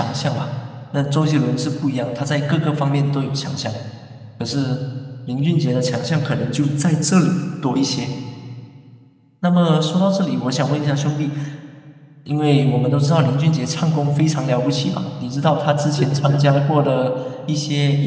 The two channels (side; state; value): both; identical; correlation 1.00